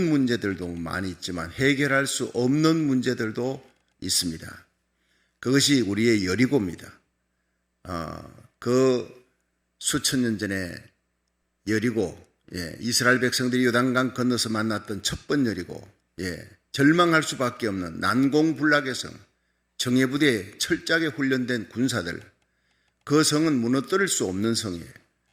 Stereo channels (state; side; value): identical; both; correlation 1.00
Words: 문제들도 많이 있지만 해결할 수 없는 문제들도 있습니다. 그것이 우리의 여리고입니다. 그 수천 년 전에 여리고, 이스라엘 백성들이 요단강 건너서 만났던 첫 번 여리고, 절망할 수밖에 없는 난공불락의 성, 정예부대에 철저하게 훈련된 군사들, 그 성은 무너뜨릴 수 없는 성이에요.